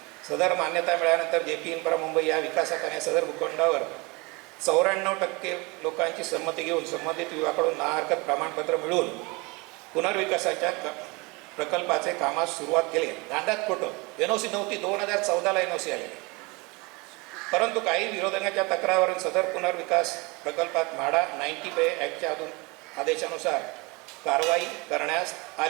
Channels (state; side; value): quieter; left; 26.6 dB